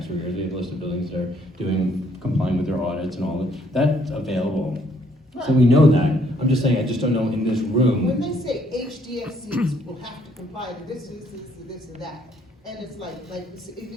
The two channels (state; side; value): normal; both; correlation 0.67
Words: arrears. We have a list of buildings that are complying with their audits and all that. That's available. Right. So we know that. I'm just saying I just don't know in this room. When they say HDFCs will have to comply to this, and that, and it's like